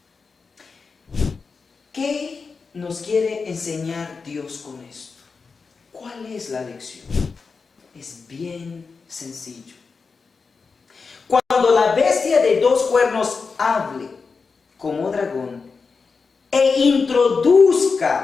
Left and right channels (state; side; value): quieter; right; 4.8 dB